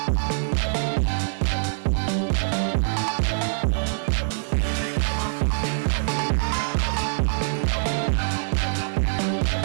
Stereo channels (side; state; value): left; silent; 63 dB below the other